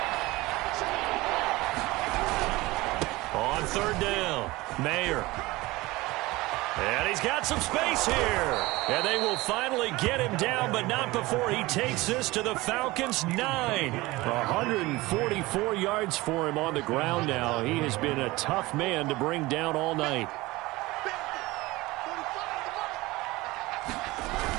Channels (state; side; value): quieter; left; 20.5 dB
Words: On third down, Mayer. And he's got some space here. And they will finally get him down, but not before he takes this to the Falcons' 9. 144 yards for him on the ground now. He has been a tough man to bring down all night.